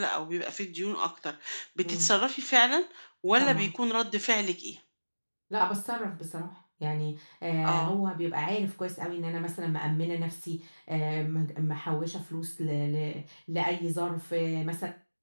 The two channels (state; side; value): inverted; both; correlation -1.00